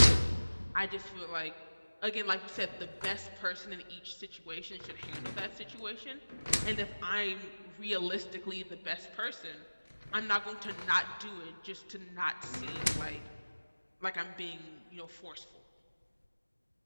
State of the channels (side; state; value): both; inverted; correlation -1.00